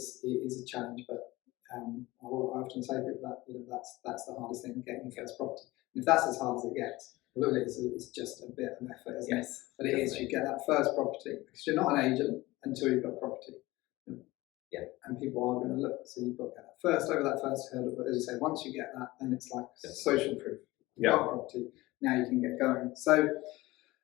a challenge, but I often say to people that that's the hardest thing, getting your first property. And if that's as hard as it gets, really, it's just a bit of effort, isn't it? But it is. You get that first property, because you're not an agent until you've got property. And people are going to look. So you've got to get that first, over that first hurdle. But as you say, once you get that, then it's like social proof. You've got property. Now you can get going. So,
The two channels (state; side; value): quieter; right; 19.6 dB